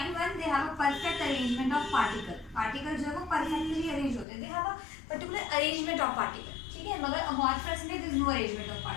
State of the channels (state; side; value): drops out; right; at 4.2 s